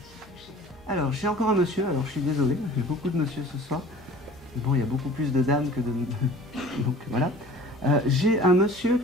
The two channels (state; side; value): noise; left; hum, 26 dB below the sound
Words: Alors, j'ai encore un monsieur, alors je suis désolé, j'ai beaucoup de monsieur ce soir. Bon, il y a beaucoup plus de dames que de... Donc voilà. J'ai un monsieur